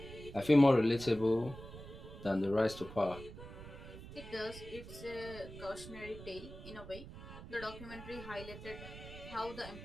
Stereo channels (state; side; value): noise; right; rumble, 13 dB below the sound